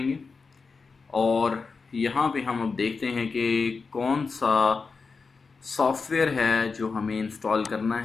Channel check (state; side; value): quieter; right; 4.7 dB